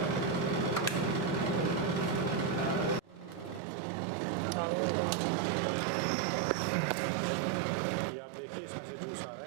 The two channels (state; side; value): drops out; left; at 3.6 s